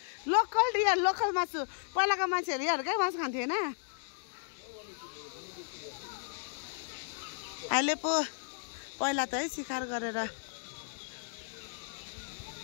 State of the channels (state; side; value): silent; right; digital silence